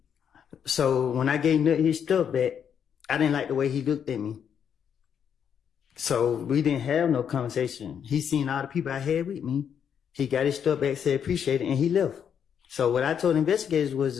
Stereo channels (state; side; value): quieter; right; 8.0 dB